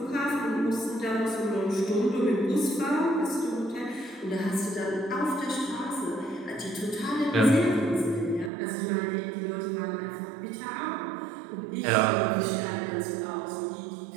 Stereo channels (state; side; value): drops out; left; at 8.5 s